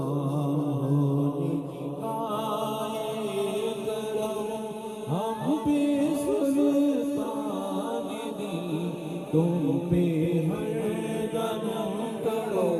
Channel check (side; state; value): both; identical; correlation 1.00